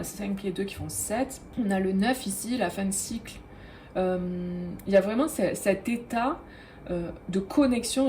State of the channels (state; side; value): identical; both; correlation 1.00